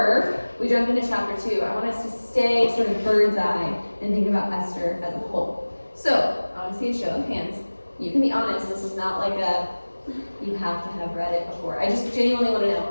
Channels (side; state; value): both; inverted; correlation -1.00